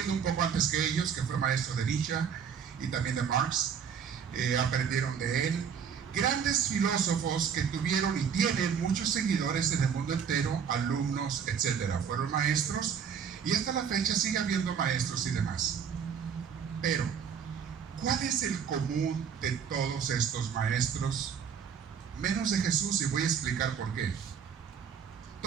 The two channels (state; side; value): quieter; left; 7.3 dB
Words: un poco antes que ellos, que fue maestro de Nietzsche y también de Marx. Aprendieron de él. Grandes filósofos que tuvieron y tienen muchos seguidores en el mundo entero, alumnos, etc. Fueron maestros y hasta la fecha sigue habiendo maestros y demás. Pero, ¿cuál es el común de todos estos maestros? Menos de Jesús, y voy a explicar por qué.